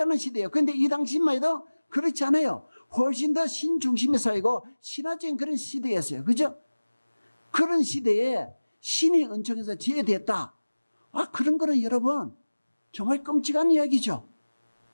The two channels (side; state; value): both; inverted; correlation -1.00